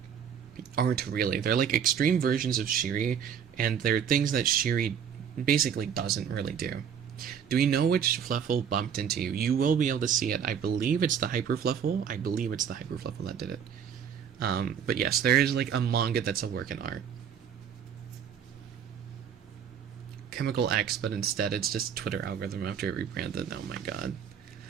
aren't really. They're like extreme versions of Shiri, and they're things that Shiri basically doesn't really do. Do we know which Fluffle bumped into you? You will be able to see it. I believe it's the Hyper Fluffle. I believe it's the Hyper Fluffle that did it. But yes, there is like a manga that's a work in art. Chemical X, but instead it's just Twitter algorithm after it rebranded. Oh my god.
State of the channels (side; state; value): left; quieter; 8.0 dB